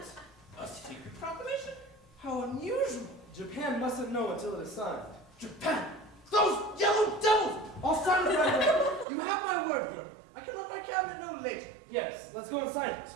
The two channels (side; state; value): left; drops out; at 9.1 s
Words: A secret proclamation? How unusual. Japan mustn't know until it is signed. Japan! Those yellow devils! I'll sign it right away. You have my word for it. I can let my cabinet know later. Yes, let's go and sign it.